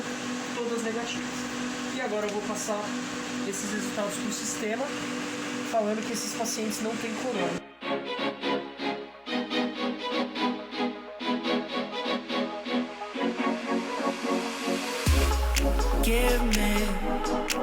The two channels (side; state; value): both; identical; correlation 1.00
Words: todas negativas. E agora eu vou passar esses resultados para o sistema, falando que esses pacientes não têm corona. Give me